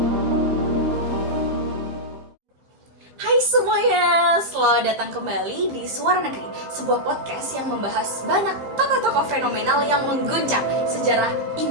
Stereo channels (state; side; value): late; left; 15 ms